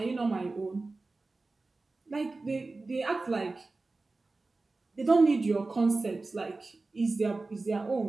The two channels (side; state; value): left; quieter; 3.5 dB